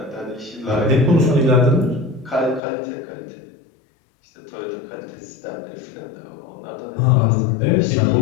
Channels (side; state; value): right; drops out; at 2.6 s